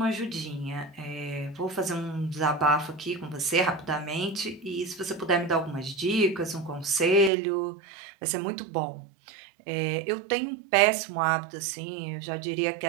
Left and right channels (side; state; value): left; drops out; at 7.3 s